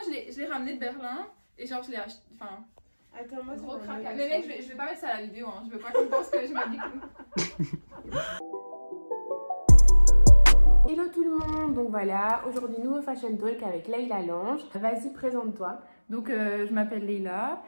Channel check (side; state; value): both; inverted; correlation -1.00